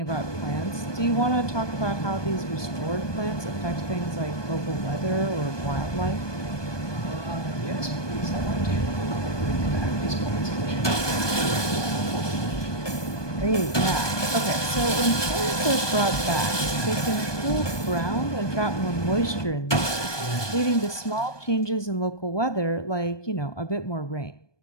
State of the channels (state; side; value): late; right; 1.2 ms